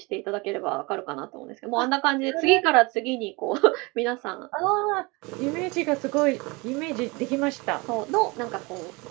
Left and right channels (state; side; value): quieter; left; 26.2 dB